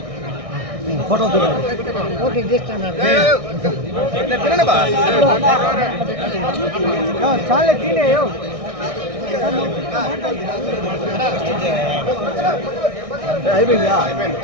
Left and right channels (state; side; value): late; left; 1.6 ms